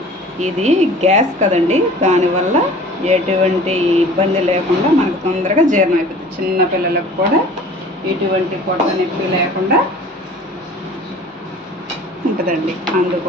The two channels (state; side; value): normal; both; correlation 0.46